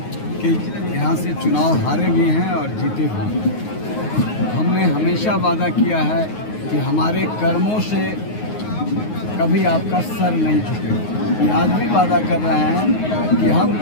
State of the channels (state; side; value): late; right; 9.5 ms